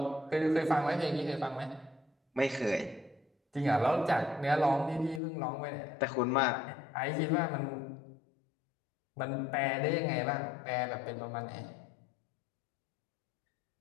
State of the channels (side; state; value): right; drops out; at 5.2 s